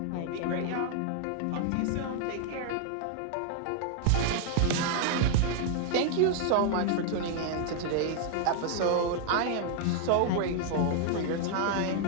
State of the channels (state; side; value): different; both; correlation 0.00